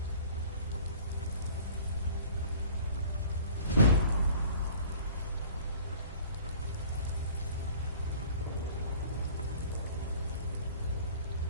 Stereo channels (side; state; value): both; inverted; correlation -0.48